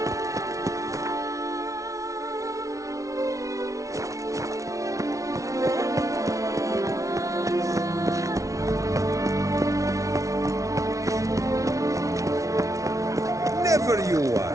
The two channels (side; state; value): left; late; 0.16 ms